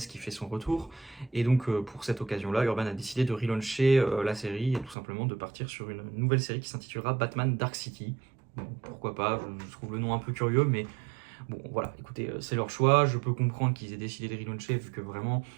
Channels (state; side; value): drops out; left; at 5.0 s